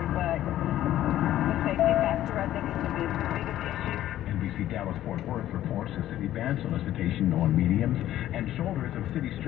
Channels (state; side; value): quieter; right; 13.0 dB